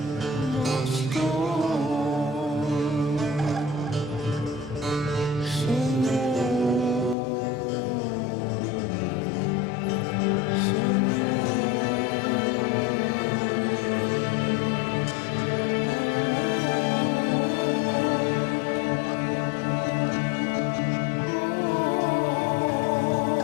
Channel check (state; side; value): drops out; right; at 7.2 s